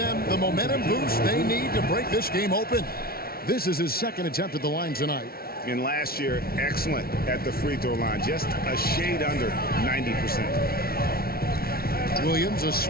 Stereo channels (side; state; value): right; late; 0.44 ms